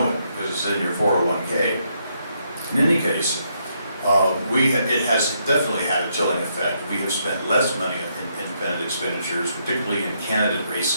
it because it's in your 401k. In any case, it has definitely had a chilling effect. We have spent less money in independent expenditures, particularly in candidate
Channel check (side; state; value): both; inverted; correlation -0.75